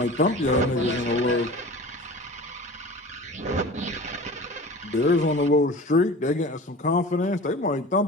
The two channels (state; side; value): normal; both; correlation 0.38